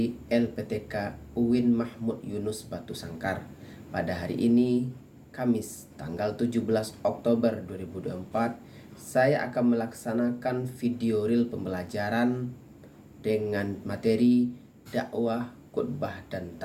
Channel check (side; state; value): both; identical; correlation 1.00